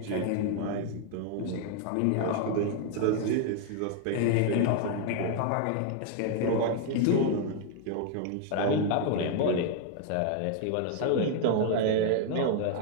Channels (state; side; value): different; both; correlation 0.00